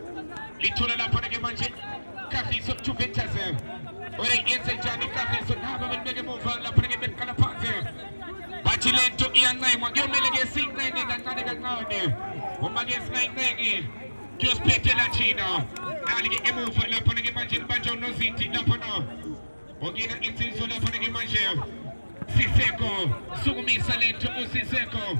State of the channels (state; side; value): inverted; both; correlation -1.00